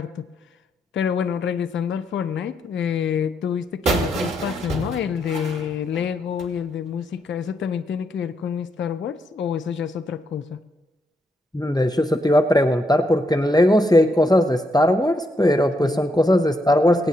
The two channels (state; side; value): normal; both; correlation 0.78